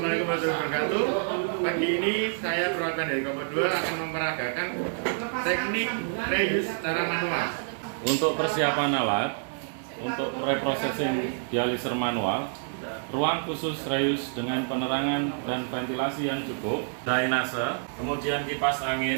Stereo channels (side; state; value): left; silent; digital silence